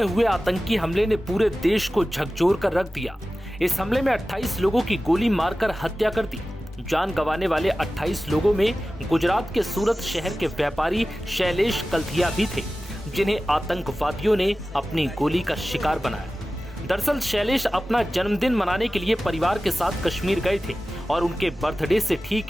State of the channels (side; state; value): both; normal; correlation 0.96